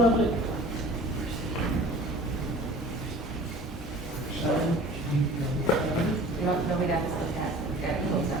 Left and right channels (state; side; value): normal; both; correlation 0.45